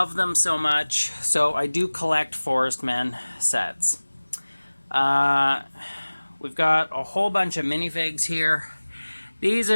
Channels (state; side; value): inverted; both; correlation -1.00